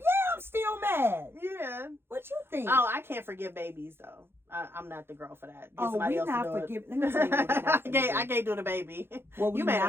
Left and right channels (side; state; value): left; late; 0.11 ms